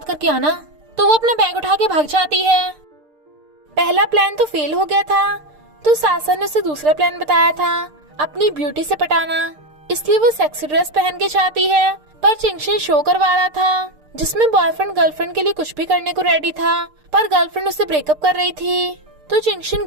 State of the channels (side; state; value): left; late; 6.6 ms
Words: करके आना। तो वो अपना बैग उठा के भाग जाती है। पहला प्लान तो फेल हो गया था, तो सासन ने उसे दूसरा प्लान बताया था, अपनी ब्यूटी से पटाना। इसलिए वो सेक्सी ड्रेस पहन के जाती है, पर चिंगशन शो करवा रहा था जिसमें बॉयफ्रेंड गर्लफ्रेंड के लिए कुछ भी करने को रेडी था, पर गर्लफ्रेंड उससे ब्रेकअप कर रही थी। तो चिंगशन